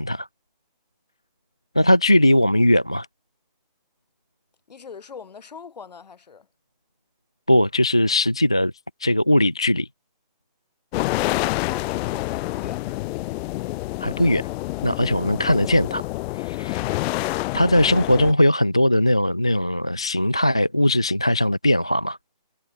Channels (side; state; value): both; inverted; correlation -0.84